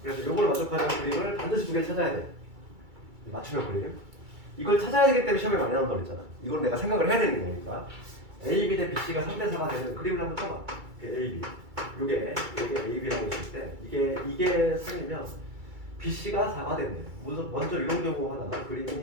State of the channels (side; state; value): left; late; 2.3 ms